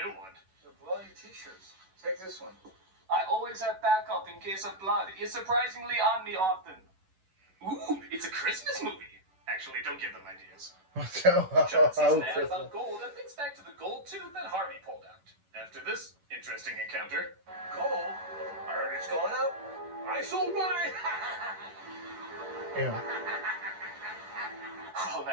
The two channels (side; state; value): left; late; 11 ms